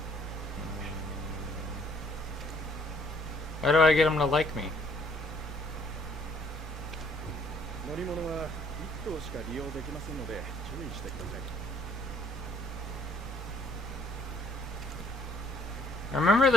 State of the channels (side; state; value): both; normal; correlation 0.63